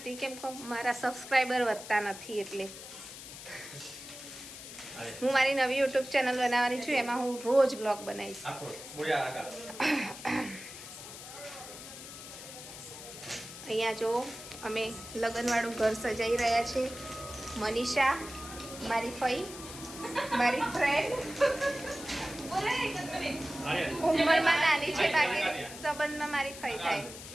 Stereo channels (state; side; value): noise; left; hiss, 13 dB below the sound